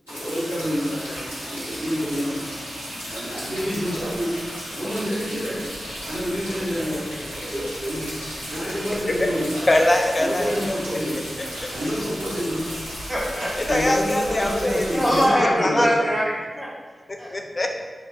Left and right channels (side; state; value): both; normal; correlation 0.94